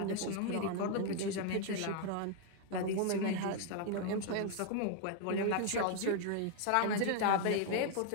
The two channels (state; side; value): different; both; correlation 0.00